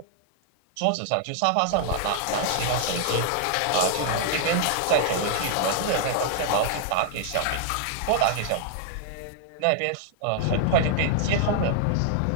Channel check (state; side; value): different; both; correlation -0.01